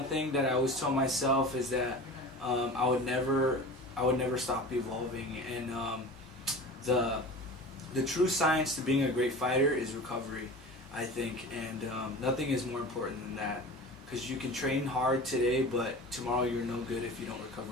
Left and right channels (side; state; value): both; normal; correlation 0.35